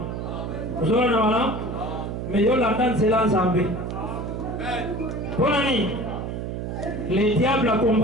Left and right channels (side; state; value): right; noise; hum, 5 dB below the sound